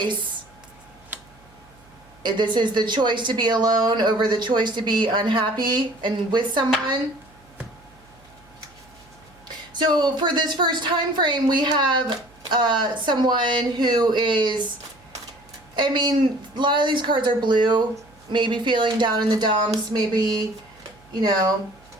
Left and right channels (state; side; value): noise; right; hum, 28 dB below the sound